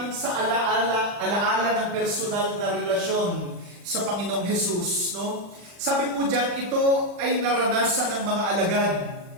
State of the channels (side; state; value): left; late; 40 ms